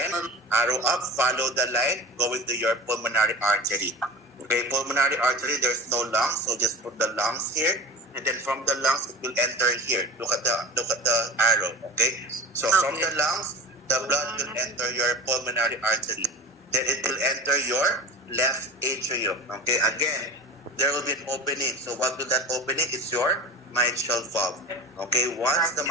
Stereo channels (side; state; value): both; normal; correlation 0.33